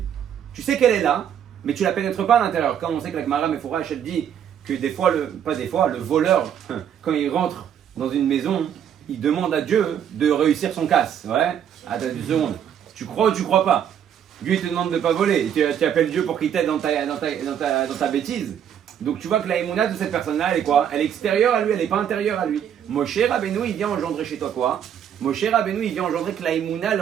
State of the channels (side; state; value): left; quieter; 9.2 dB